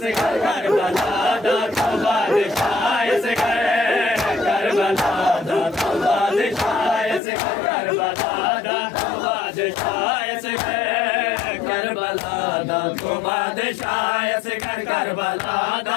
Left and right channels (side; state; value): right; drops out; at 7.2 s